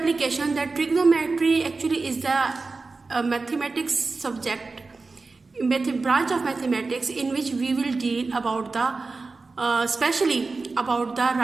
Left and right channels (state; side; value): quieter; left; 3.9 dB